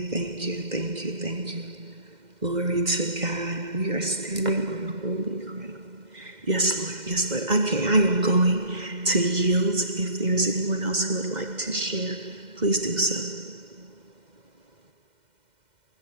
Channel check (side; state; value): left; late; 2.1 ms